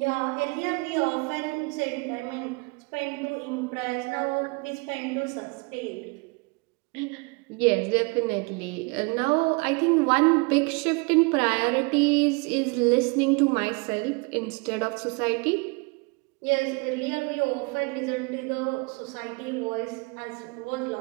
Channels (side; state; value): left; quieter; 30.2 dB